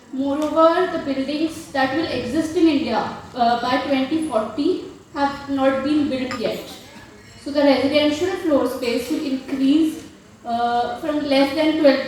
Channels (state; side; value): identical; both; correlation 1.00